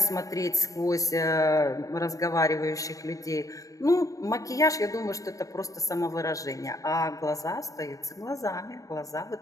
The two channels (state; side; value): late; right; 0.16 ms